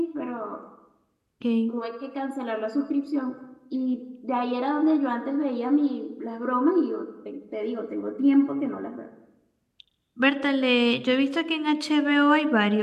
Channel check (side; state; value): both; identical; correlation 1.00